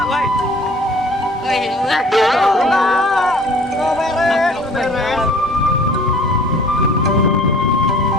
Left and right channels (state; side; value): normal; both; correlation 0.50